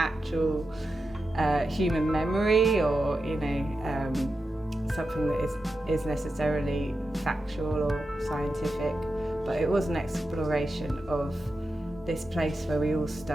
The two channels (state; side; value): normal; both; correlation 0.90